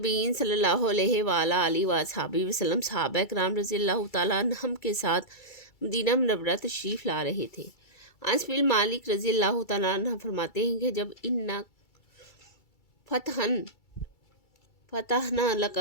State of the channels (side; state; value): right; late; 2.3 ms